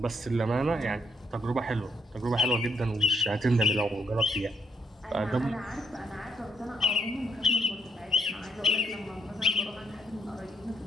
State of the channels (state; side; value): normal; both; correlation 0.75